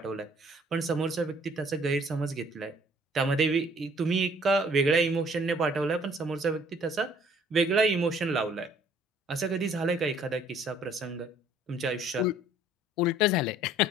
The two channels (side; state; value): both; normal; correlation 0.58